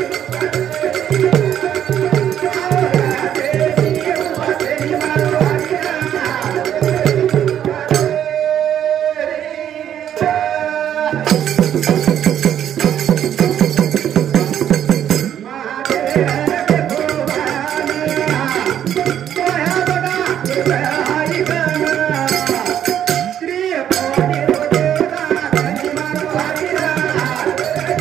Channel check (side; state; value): left; quieter; 10.1 dB